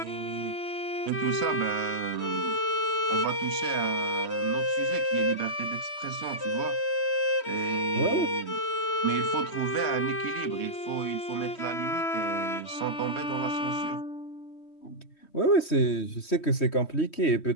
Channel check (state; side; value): late; right; 3.2 ms